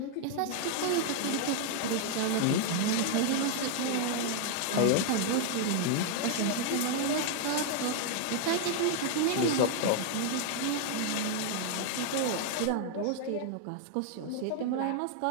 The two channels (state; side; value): different; both; correlation 0.00